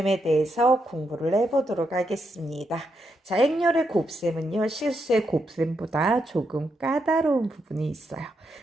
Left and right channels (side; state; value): both; normal; correlation 0.81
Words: 대해서 공부를 해보도록 하겠습니다. 자, 행렬의 곱셈은요, 실수의 곱셈보다 조금 까다로운 부분이 있어요.